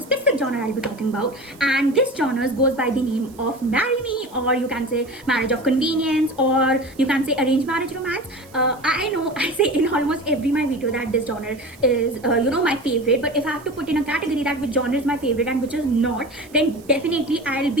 genre I'll be talking about, and this genre goes by the name of Marry Me, or you can say Marriage of Convenience, or you can say Arranged Marriage Romance. I know I say in almost every my video that this genre is my favorite, but if I have to put in a category that which genre is my favorite and which is not, then definitely I'll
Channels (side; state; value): right; noise; hiss, 25 dB below the sound